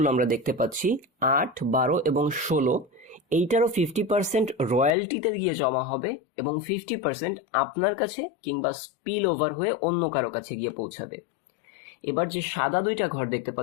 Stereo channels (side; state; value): right; drops out; at 5.0 s